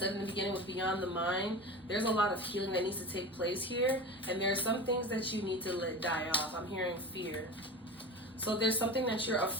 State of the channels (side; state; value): both; normal; correlation 0.30